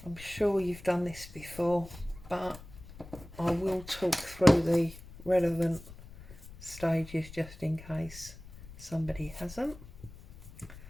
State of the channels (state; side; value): noise; left; rumble, 17 dB below the sound